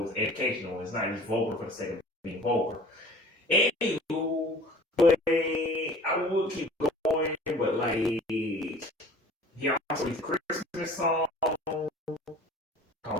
it's educational. It's not just vulgar for the sake of being vulgar. Anywho, but I would keep going, but like, he also released a Christmas song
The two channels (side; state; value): both; normal; correlation 0.46